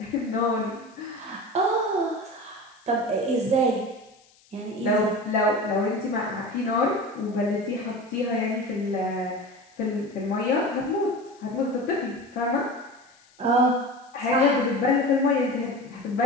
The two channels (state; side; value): noise; left; hiss, 30 dB below the sound